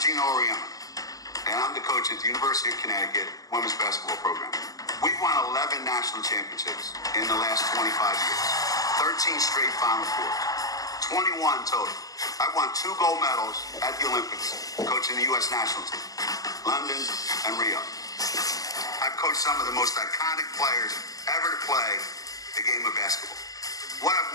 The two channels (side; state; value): right; late; 0.17 ms